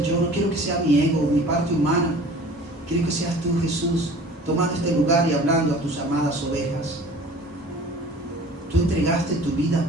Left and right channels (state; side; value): normal; both; correlation 0.45